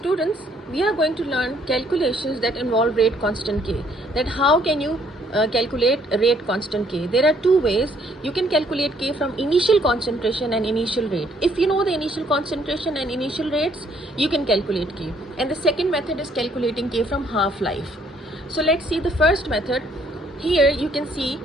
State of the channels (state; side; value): normal; both; correlation 0.66